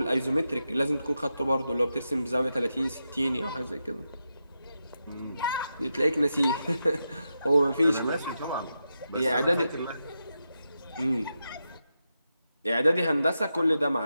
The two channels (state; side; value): inverted; both; correlation -0.87